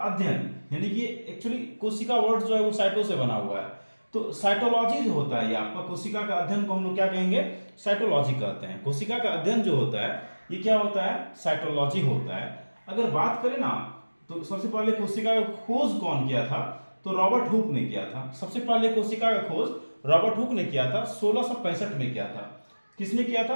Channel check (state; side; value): inverted; both; correlation -1.00